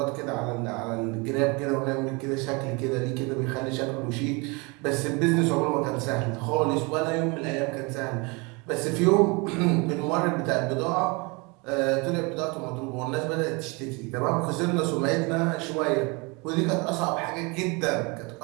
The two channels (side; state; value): left; quieter; 28.5 dB